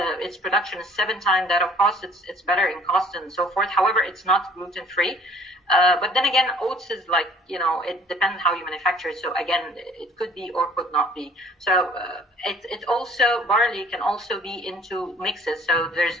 Its production is 7 times that of cost. It's better in cost and so forth. However, it's not gluten-free. But then again, oats is like, it depends how you manufacture it. So again, it could be or could not be. So it also, barley can also be into mixes. So there's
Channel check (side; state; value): both; normal; correlation 0.55